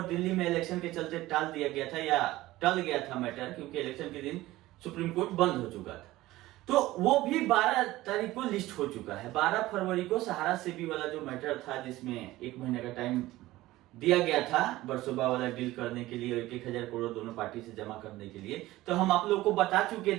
दिल्ली में इलेक्शन के चलते टाल दिया गया था या टल गया था मैटर, क्योंकि इलेक्शन के दिन सुप्रीम कोर्ट बंद हो चुका था, तो वो भी 12 तारीख को लिस्ट हो चुका है। 12 फरवरी को सहारा सेबी वाला जो मैटर था जिसमें 1 महीने का टाइम दिया गया था बरसोबा वाला डील करने के लिए, 1,000 करोड़ दोनों पार्टी से जमा करने के लिए, तो हम आप लोगों को बता चुके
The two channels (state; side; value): quieter; left; 17.2 dB